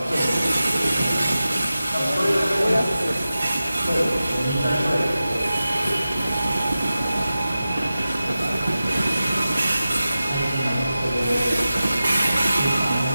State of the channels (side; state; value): both; inverted; correlation -0.94